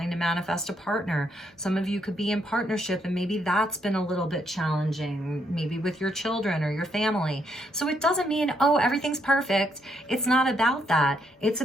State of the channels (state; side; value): normal; both; correlation 0.75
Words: to manifest a partner. Some of you could be in partnership and maybe that's been a little bit challenging, maybe with your children or your family. So it doesn't mean, oh, everything's perfect. It's not about that. It's